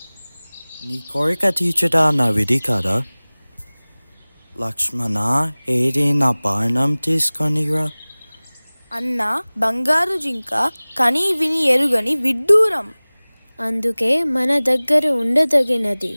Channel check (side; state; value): both; inverted; correlation -1.00